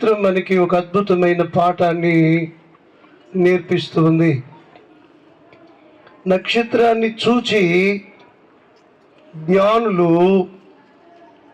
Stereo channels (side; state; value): both; identical; correlation 1.00